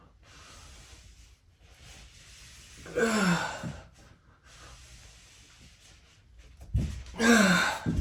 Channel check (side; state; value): both; identical; correlation 1.00